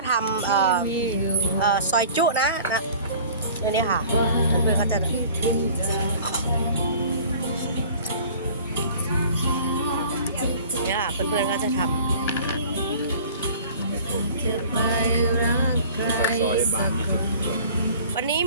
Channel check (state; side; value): inverted; both; correlation -0.46